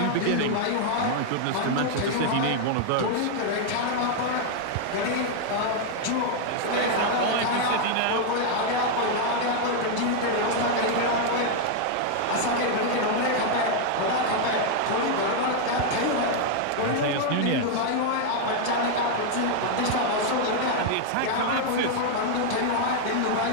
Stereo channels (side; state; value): both; different; correlation 0.00